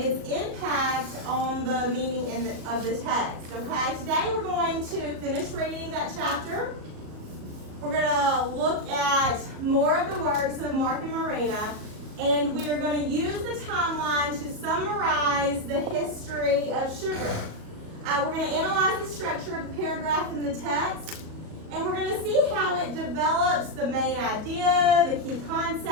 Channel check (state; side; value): late; left; 38 ms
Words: impact on the meaning of the text. Okay, today we're going to finish reading that chapter. We're going to look at more of the works of Mark and Marina, and we are going to use the timeline to summarize the history of sugar. We're going to analyze the structure of the paragraph in the text, and we're going to see how it develops the main idea, the key